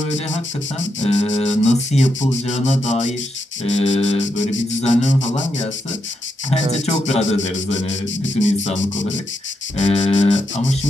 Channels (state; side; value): normal; both; correlation 0.82